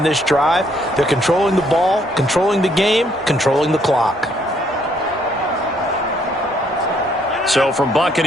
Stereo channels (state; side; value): normal; both; correlation 0.68